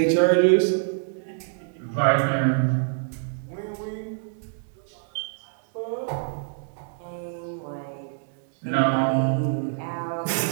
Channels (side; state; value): left; silent; digital silence